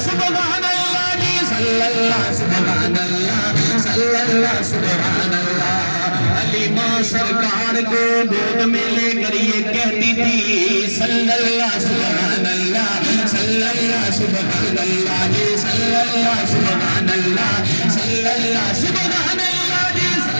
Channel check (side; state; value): both; inverted; correlation -1.00